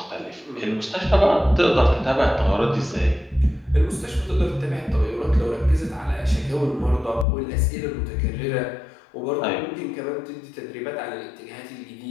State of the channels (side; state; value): right; drops out; at 7.2 s